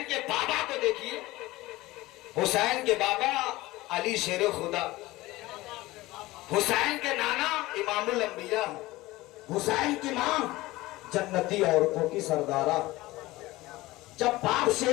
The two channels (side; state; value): right; quieter; 19.0 dB